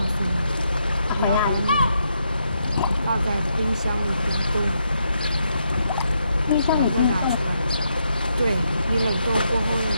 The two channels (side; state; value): both; inverted; correlation -0.79